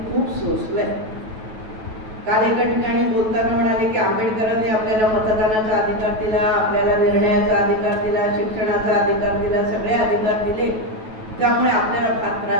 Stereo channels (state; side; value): late; left; 9.2 ms